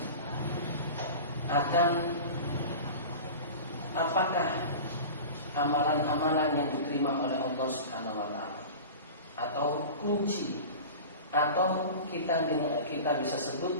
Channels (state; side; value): inverted; both; correlation -0.34